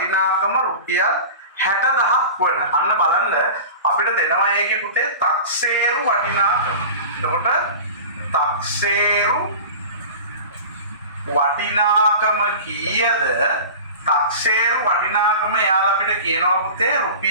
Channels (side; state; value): both; inverted; correlation -0.34